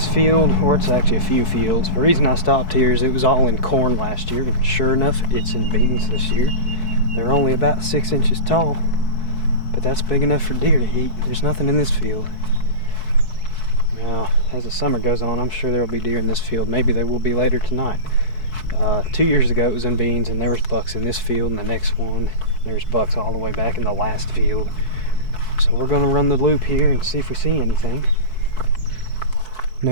field, or it's actually a few fields, the reason I stopped here is it was all in corn last year, and sure enough, it's in beans this year. They're only about 6 inches tall, but that's big enough for deer to eat. There's nothing in this field. Now, as the summer goes on, I'm sure there will be deer in this field. Maybe they will be later tonight. 2 years ago it was in beans, and there was bucks in this field, and the next one, there's bucks all the way back in the last field. So we're going to run the loop here and see if we see anything.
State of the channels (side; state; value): right; late; 4.6 ms